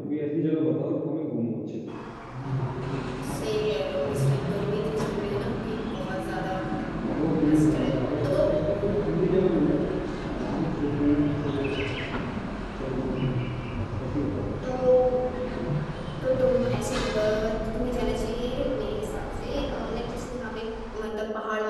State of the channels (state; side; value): identical; both; correlation 1.00